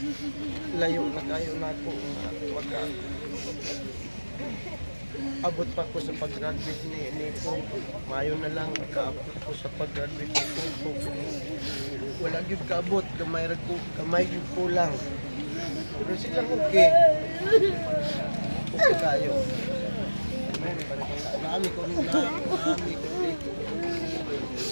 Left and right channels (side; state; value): both; inverted; correlation -1.00